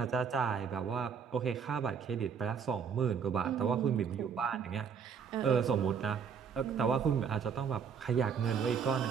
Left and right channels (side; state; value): left; quieter; 6.7 dB